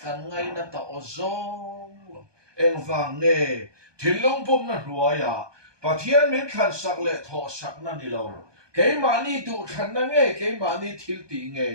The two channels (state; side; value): late; left; 1.2 ms